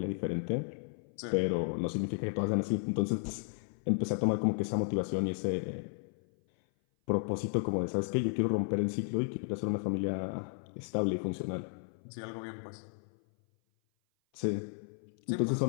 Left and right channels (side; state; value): right; silent; 55 dB below the other